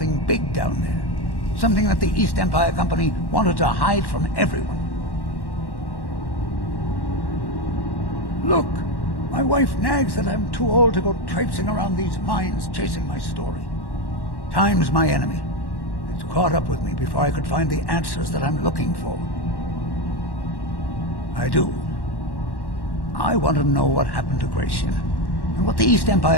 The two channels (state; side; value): late; right; 1.1 ms